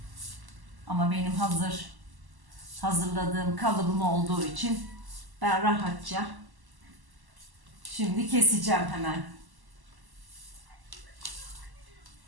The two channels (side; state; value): left; late; 1.1 ms